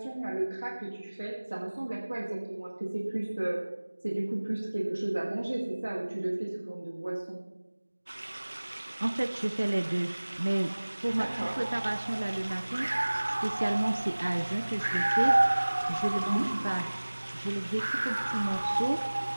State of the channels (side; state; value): both; inverted; correlation -1.00